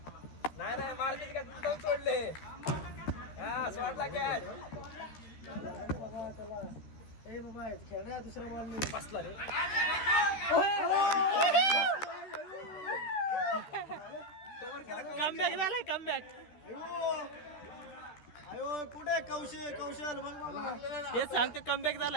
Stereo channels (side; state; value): right; late; 13 ms